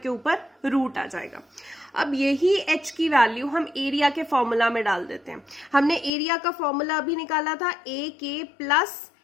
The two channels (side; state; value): right; drops out; at 6.1 s